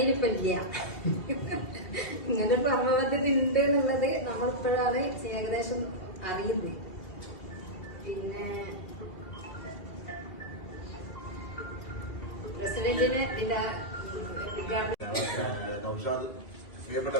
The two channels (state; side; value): late; right; 2.7 ms